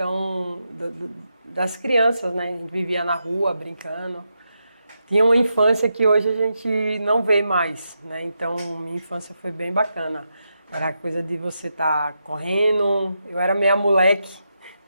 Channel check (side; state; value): both; inverted; correlation -0.86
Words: das crianças, né? A gente vivia na rua brincando. Tinha uma infância que hoje a gente não vê mais, né? Então minha infância foi bem bacana. Era a coisa de você estar correndo. Eu era meia moleque,